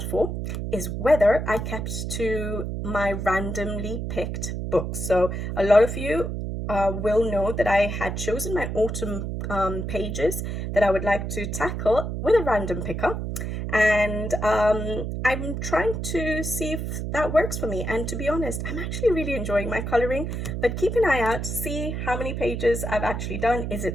for is whether I kept to my randomly picked books. So a lot of you will know that I had chosen my autumn pages that I would like to tackle with a random picker. And I'm trying to see if that works for me. And to be honest, I'm actually really enjoying my coloring, but keep an eye out, see how many pages I've actually done. Is it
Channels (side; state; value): right; noise; hum, 4 dB below the sound